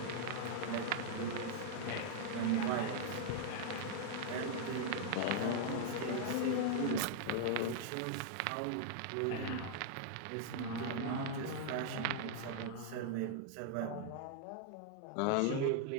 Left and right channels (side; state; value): both; different; correlation -0.01